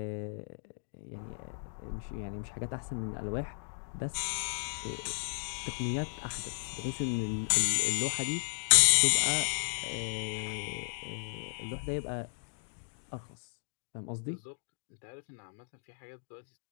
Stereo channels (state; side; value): silent; right; digital silence